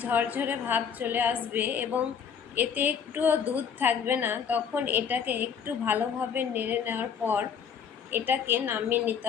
ঝরঝরে ভাব চলে আসবে এবং এতে একটুও দুধ থাকবে না তখন এটাকে একটু ভালোভাবে নেড়ে নেওয়ার পর এটাকে নামিয়ে নিতে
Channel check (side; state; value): right; quieter; 7.2 dB